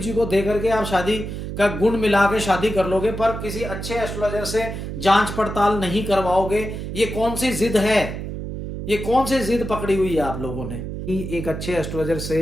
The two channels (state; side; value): noise; right; hum, 6 dB below the sound